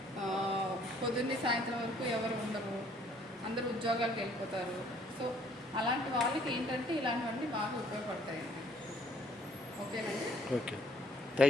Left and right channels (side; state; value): both; normal; correlation 0.61